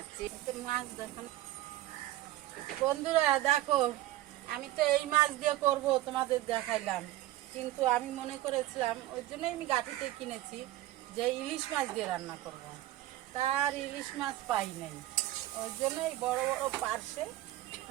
মাছ দেখো বন্ধুরা, দেখো আমি তো এই মাছ দিয়ে করব, তোমাদের দেখাইলাম। কিন্তু আমি মনে করেছিলাম, ওই জন্যই আমি গাঠিতে কিনেছি, যে ইলিশ মাছ দিয়ে রান্না করব। তার ইলিশ মাছ পাই নাই, ওই জন্য এই বড় বড়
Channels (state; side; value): quieter; left; 15.4 dB